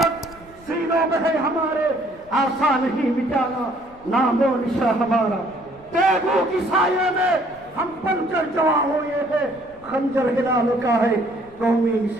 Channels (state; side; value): noise; left; rumble, 25 dB below the sound